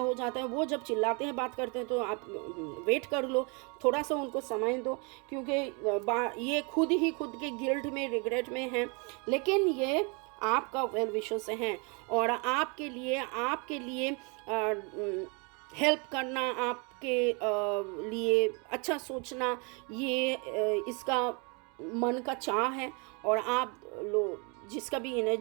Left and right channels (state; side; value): quieter; left; 32.5 dB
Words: जाता है। वो जब चिल्लाते हैं बात करते हैं तो आप वेट कर लो, थोड़ा सा उनको समय दो, क्योंकि ये खुद ही खुद के गिल्ट में, रिग्रेट में हैं, लेकिन ये आपका वेल विशेस हैं और आपके लिए हेल्प करना, आपके लिए अच्छा सोचना, ये इसका मन का चाह है। और आप लोग जिसका भी